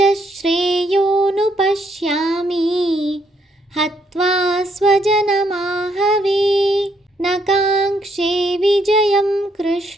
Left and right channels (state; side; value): normal; both; correlation 0.72